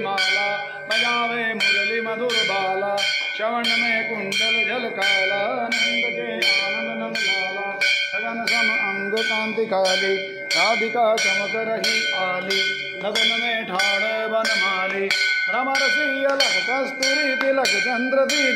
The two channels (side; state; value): both; identical; correlation 1.00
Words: माला बजावे मुरली मधुर बाला। श्रवण में कुंडल झलकाला नंद के आनंद नंद लाला। गगन सम अंग कांति काली राधिका चमक रही आली। लगन में ठाड़ बनमाली रमरसी अलग कस्तूरी तिलक चंद्र दी